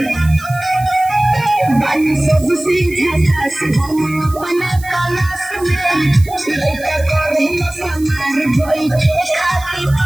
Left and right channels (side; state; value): right; noise; hiss, 18 dB below the sound